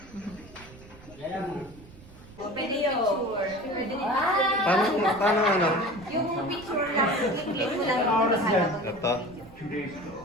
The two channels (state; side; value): noise; right; rumble, 21 dB below the sound